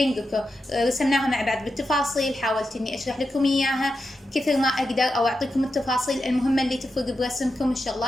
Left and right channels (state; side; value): normal; both; correlation 0.89